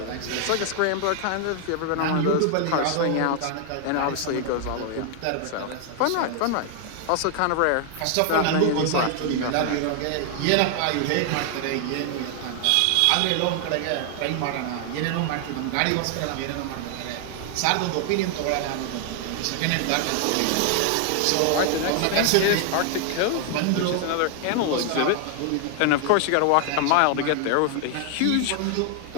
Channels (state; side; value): different; both; correlation 0.00